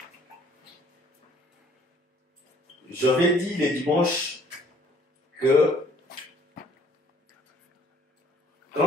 J'avais dit le dimanche que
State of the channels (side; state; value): both; normal; correlation 0.59